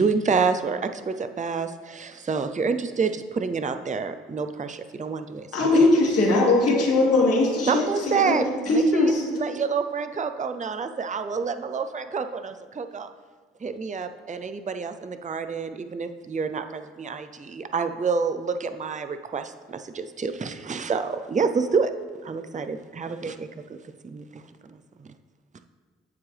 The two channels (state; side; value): normal; both; correlation 0.49